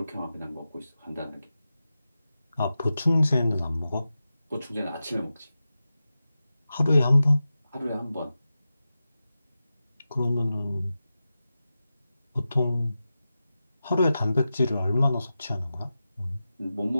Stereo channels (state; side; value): inverted; both; correlation -0.92